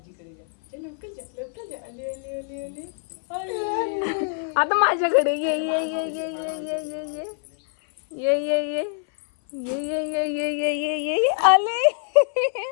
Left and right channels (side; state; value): right; silent; 58 dB below the other